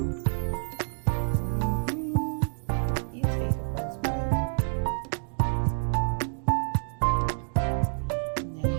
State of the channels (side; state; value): left; silent; digital silence